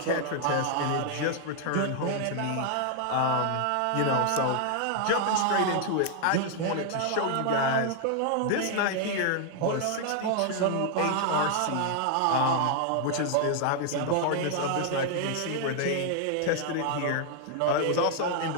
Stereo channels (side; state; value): both; different; correlation 0.00